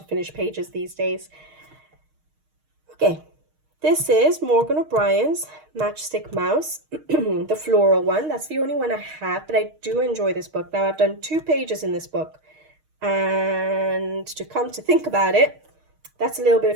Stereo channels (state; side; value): late; left; 6.5 ms